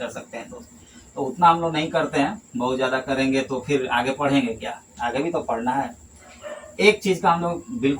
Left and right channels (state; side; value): identical; both; correlation 1.00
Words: सकते हैं दोस्त। तो उतना हम लोग नहीं करते हैं, बहुत ज़्यादा करेंगे तो फिर आगे पढ़ेंगे क्या, आगे भी तो पढ़ना है। एक चीज़ का हम लोग